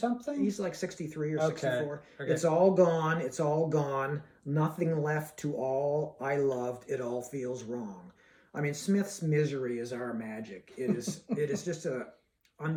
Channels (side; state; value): both; identical; correlation 1.00